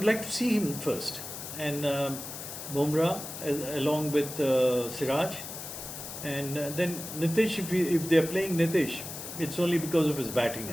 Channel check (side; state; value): left; noise; hiss, 9 dB below the sound